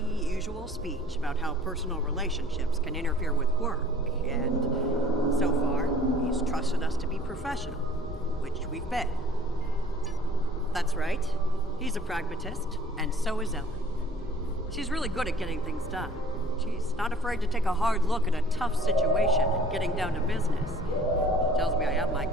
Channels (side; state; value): both; normal; correlation 0.52